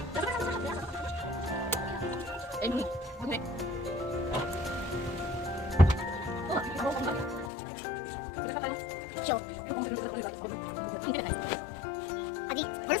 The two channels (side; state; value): right; drops out; at 7.5 s